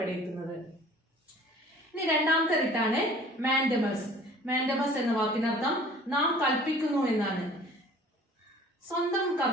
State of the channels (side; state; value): both; normal; correlation 0.49